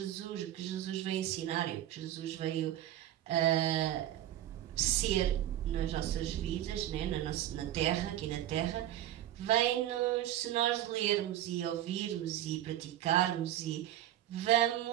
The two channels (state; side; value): quieter; left; 12.6 dB